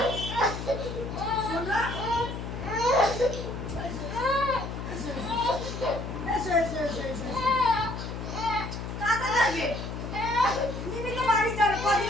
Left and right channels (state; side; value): noise; left; hum, 6 dB below the sound